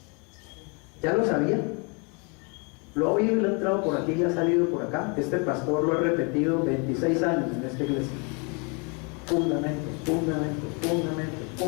¿Ya lo sabía? Lo ha oído y le ha entrado por aquí y ha salido por acá. Este pastor lo ha repetido 26 años en esta iglesia. Fundamentos, fundamentos, fundamentos,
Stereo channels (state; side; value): quieter; right; 33.4 dB